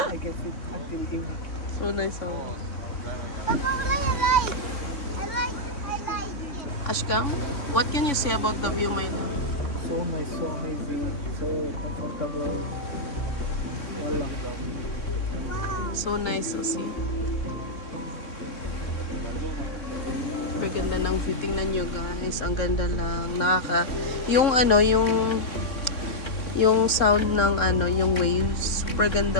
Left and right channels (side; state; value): right; late; 3.6 ms